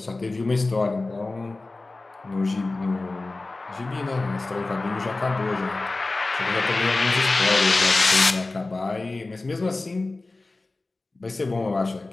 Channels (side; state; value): right; quieter; 3.2 dB